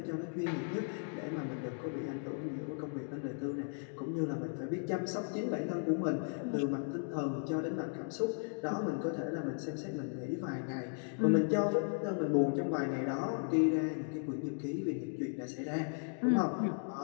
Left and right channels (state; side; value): silent; right; 54 dB below the other